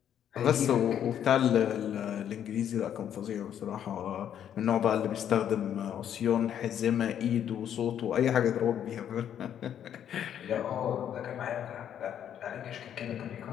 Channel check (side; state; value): right; quieter; 9.7 dB